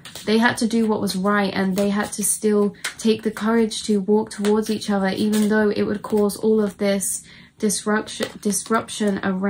They had to do what was right, and they had to still take the courage to walk towards each other, even though it would cause all of this disruption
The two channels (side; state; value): both; identical; correlation 1.00